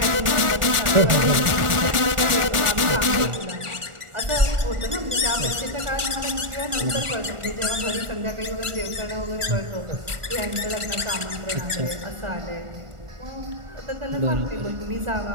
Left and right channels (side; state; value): left; late; 1.4 ms